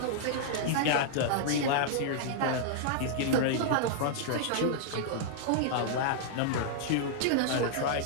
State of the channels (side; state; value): both; different; correlation -0.01